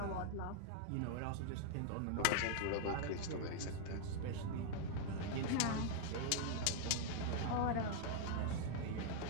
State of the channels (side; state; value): both; different; correlation 0.00